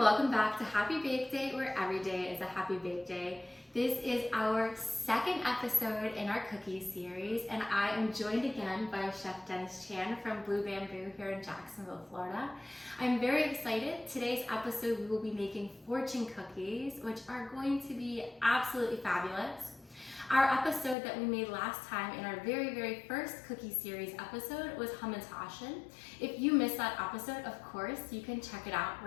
back to Happy Bake Day, where every day is a happy bake day. This is our second episode in our cookie series, and I am joined again by Chef Dennis Chan from Blue Bamboo here in Jacksonville, Florida. I'm very excited. Today's episode we will be making fortune cookies, which are going to be absolutely fabulous. Our episode that we made last time in our very first cookie series episode was Hamantaschen. If you missed that episode, of course, you can check it out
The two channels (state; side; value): drops out; right; at 21.0 s